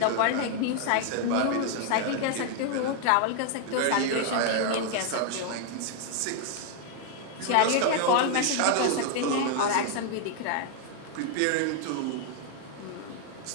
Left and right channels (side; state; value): both; different; correlation 0.00